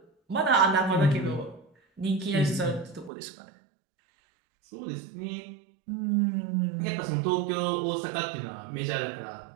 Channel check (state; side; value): drops out; left; at 3.1 s